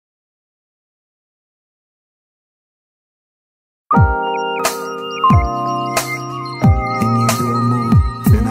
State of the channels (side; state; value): both; identical; correlation 1.00